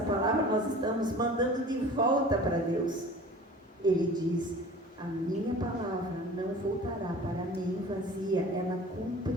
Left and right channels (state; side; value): normal; both; correlation 0.43